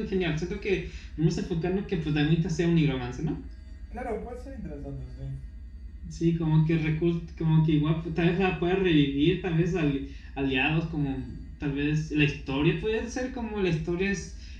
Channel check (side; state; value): both; identical; correlation 1.00